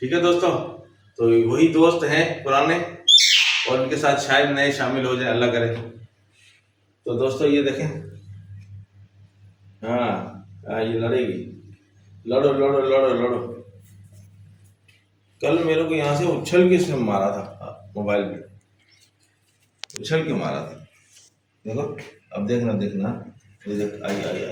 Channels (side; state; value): both; identical; correlation 1.00